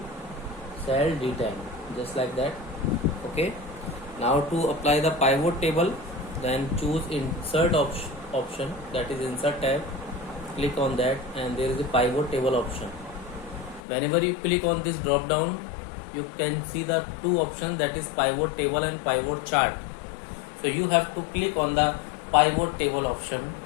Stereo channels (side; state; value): right; drops out; at 13.8 s